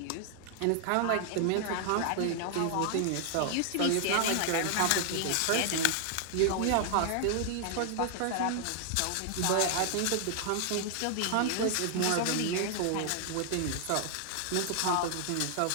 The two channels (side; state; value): both; different; correlation 0.00